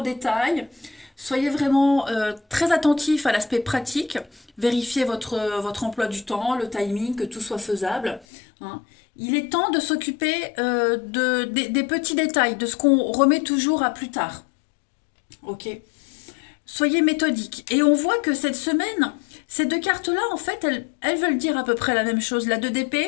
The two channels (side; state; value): right; drops out; at 8.2 s